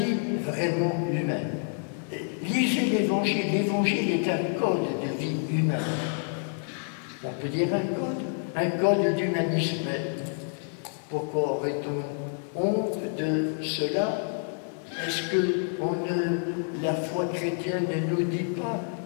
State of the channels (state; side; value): silent; right; 59 dB below the other